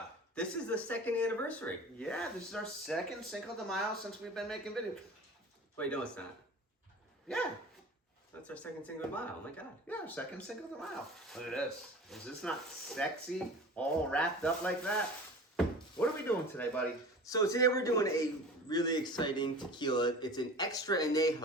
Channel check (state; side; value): normal; both; correlation 0.38